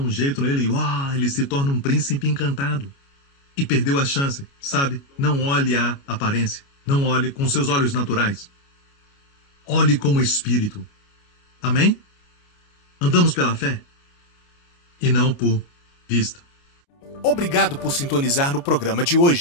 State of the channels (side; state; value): right; late; 29 ms